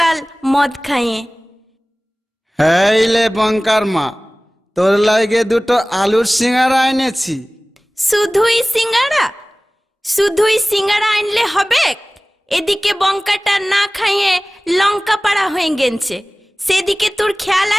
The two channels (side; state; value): both; normal; correlation 0.98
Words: मद खाइए। हेले बंकर माँ, तोर लागे दुटो आलूर सिंगारा এনেছি। শুধুই সিঙ্গারা আনলে হবে? এদিকে বঙ্কাটা না খাইয়ে লঙ্কা পাড়া হয়ে গেছে, সেদিকে তোর খেয়াল